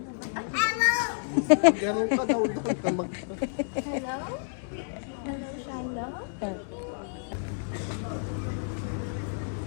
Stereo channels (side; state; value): right; silent; digital silence